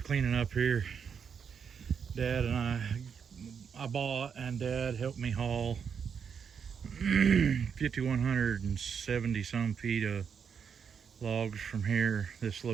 cleaning up here. Dad and I bought, and Dad helped me haul 5,170 some feet of logs from here, this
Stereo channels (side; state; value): left; quieter; 6.9 dB